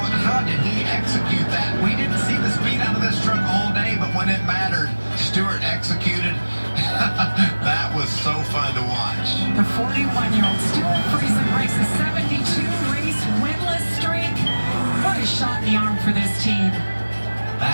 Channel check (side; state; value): both; inverted; correlation -1.00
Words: how did he execute that? We didn't see the speed out of this truck all day, but when it mattered, Stewart executed. That was so fun to watch. The 41-year-old Stewart Friesen breaks a 72-race winless streak. What a shot in the arm for this team.